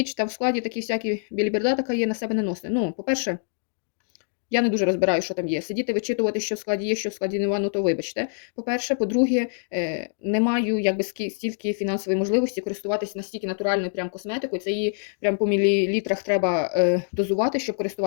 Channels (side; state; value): right; silent; digital silence